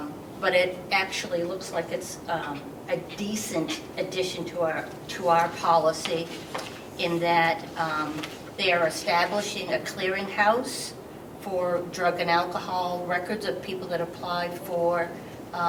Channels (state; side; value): identical; both; correlation 1.00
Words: But it actually looks like it's a decent addition to our policy, in that they are establishing a clearinghouse for drug and alcohol records of people that apply for